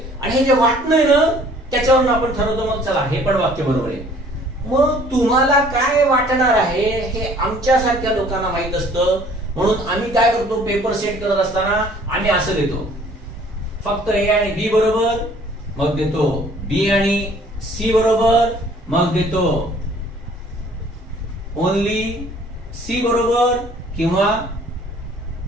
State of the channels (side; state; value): both; normal; correlation 0.55